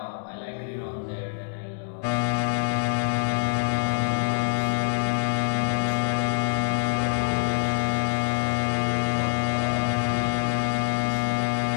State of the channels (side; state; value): right; silent; digital silence